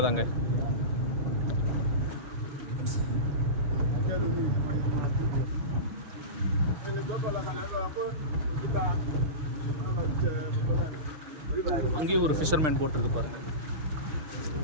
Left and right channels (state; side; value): late; left; 6.5 ms